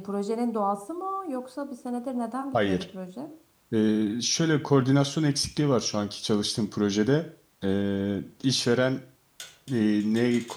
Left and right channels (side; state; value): both; identical; correlation 1.00